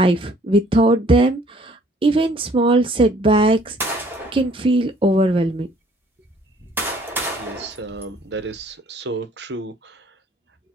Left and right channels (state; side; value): normal; both; correlation 0.58